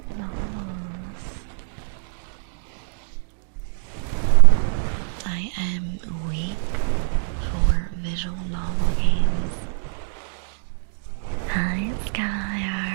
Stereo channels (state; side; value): silent; left; digital silence